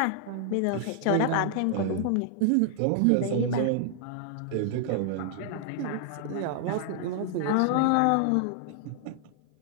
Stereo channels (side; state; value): both; different; correlation -0.01